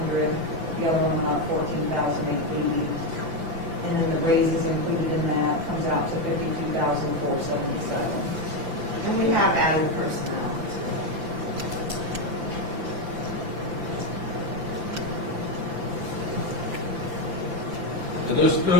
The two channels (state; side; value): late; left; 5.9 ms